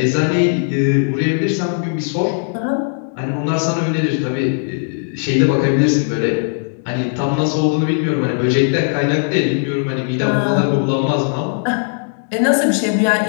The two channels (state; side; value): silent; right; digital silence